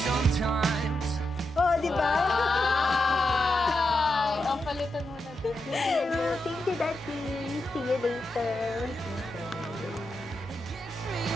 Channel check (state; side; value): normal; both; correlation 0.86